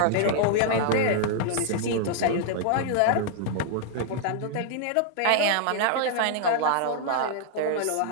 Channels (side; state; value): both; different; correlation -0.01